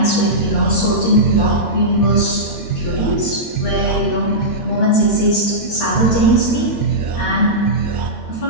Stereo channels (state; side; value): late; right; 13 ms